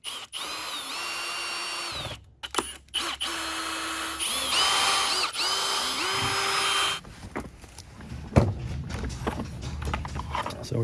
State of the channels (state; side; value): identical; both; correlation 1.00